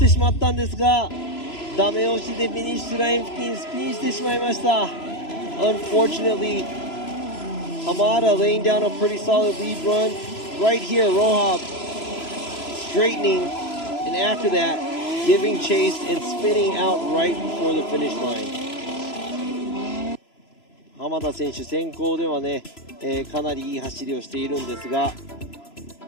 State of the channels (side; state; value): right; late; 3.0 ms